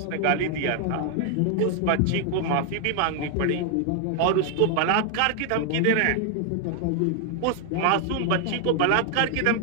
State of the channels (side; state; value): both; different; correlation 0.00